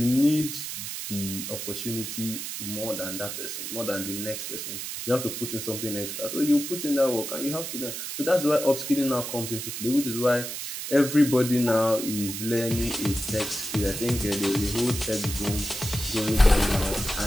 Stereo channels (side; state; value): right; noise; hiss, 6 dB below the sound